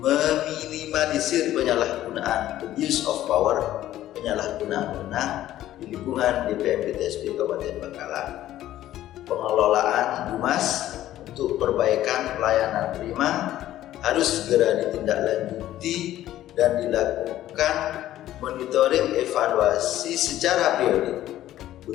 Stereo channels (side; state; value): right; quieter; 13.5 dB